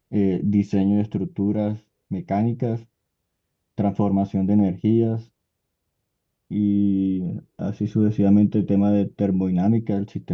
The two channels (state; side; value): identical; both; correlation 1.00